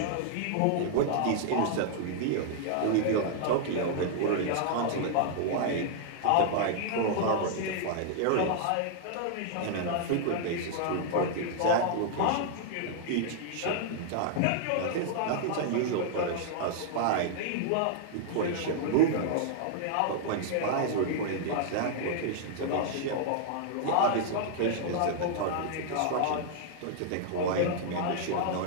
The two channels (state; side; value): different; both; correlation -0.01